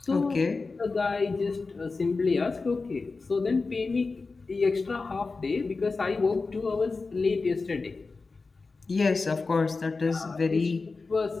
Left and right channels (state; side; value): quieter; right; 4.0 dB